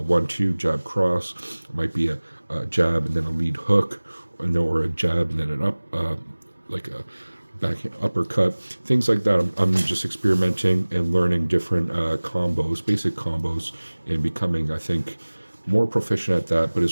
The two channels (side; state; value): both; inverted; correlation -1.00